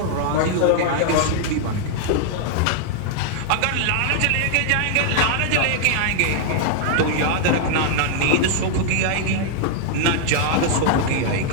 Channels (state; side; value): different; both; correlation 0.00